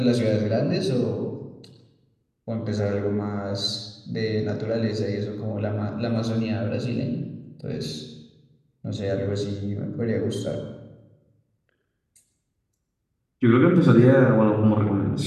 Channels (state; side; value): identical; both; correlation 1.00